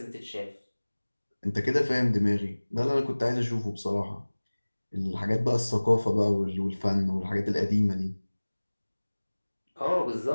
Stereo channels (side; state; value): both; inverted; correlation -1.00